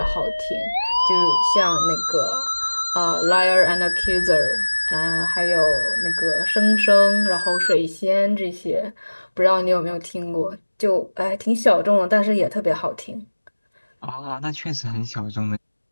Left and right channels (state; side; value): inverted; both; correlation -1.00